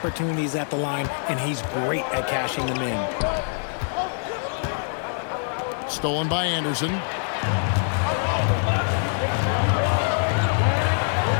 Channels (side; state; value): right; silent; 62 dB below the other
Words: at the line, and he's great at cashing them in. Stolen by Anderson.